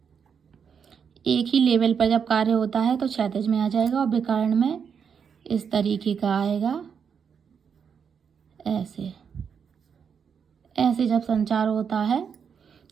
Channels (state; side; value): quieter; left; 6.9 dB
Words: एक ही लेवल पर जब कार्य होता है तो क्षैतिज में आ जाएगा, और विकर्ण में इस तरीके का आएगा, ऐसे ऐसे जब संचार होता है